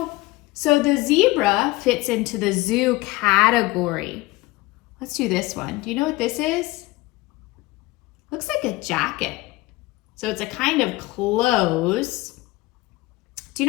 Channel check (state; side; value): quieter; right; 20.5 dB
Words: So the zebra fits into the zoo category. Let's do this one. Do you know what this is? Looks like a jacket. So it's a kind of clothes. Do